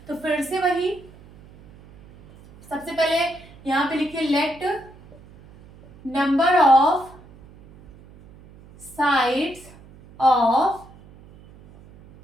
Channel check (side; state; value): right; noise; hum, 23 dB below the sound